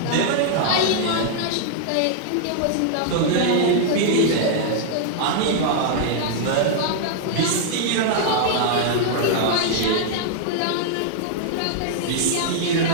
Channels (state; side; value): different; both; correlation -0.01